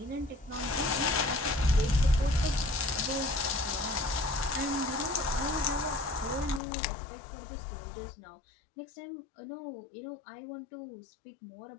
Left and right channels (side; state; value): right; drops out; at 6.6 s